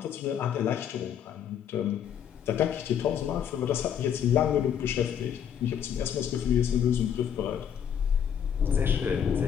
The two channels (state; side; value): quieter; right; 8.7 dB